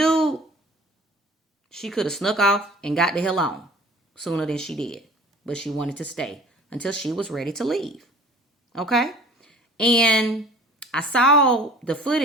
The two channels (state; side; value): normal; both; correlation 0.47